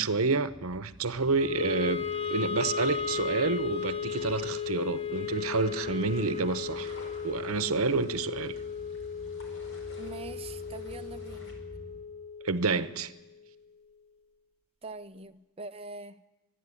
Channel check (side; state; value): both; normal; correlation -0.20